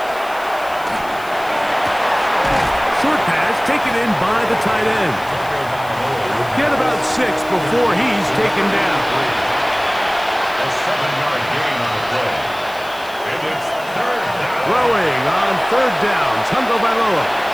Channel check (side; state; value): left; noise; hiss, 20 dB below the sound